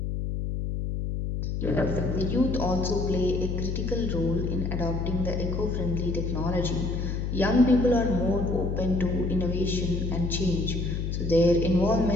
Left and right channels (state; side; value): noise; left; hum, 2 dB below the sound